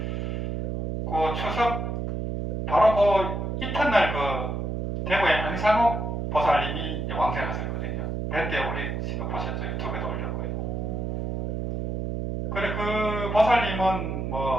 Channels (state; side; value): noise; right; hum, 2 dB below the sound